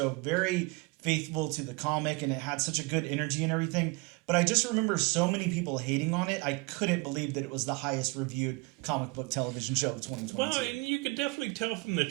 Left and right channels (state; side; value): quieter; left; 26.2 dB